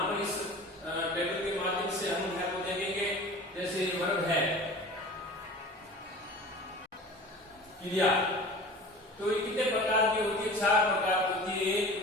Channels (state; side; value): normal; both; correlation 0.39